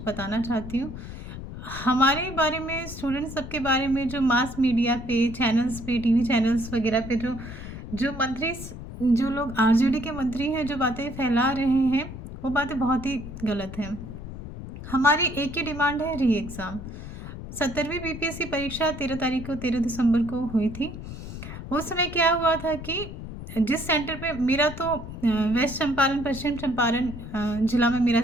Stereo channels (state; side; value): noise; left; rumble, 10 dB below the sound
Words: बताना चाहती हूँ। हमारे बारे में, स्टूडेंट्स सबके बारे में जो मास मीडिया पे, चैनल्स पे, टीवी चैनल्स वगैरह पे जो जो मंत्री जो लोग आरजेडी के मंत्री हैं, जो बातें फैला रहे हैं, वो बातें बहुत ही गलत हैं। हमारी एक ही डिमांड है, री एग्ज़ाम। 17वीं बीपीएससी परीक्षा 13 तारीख को, 13 दिसंबर को हुई थी। उस समय क्या हुआ था कि जिस सेंटर पे मेरा तो वेस्ट चंपारण, पश्चिम चंपारण जिला में मेरा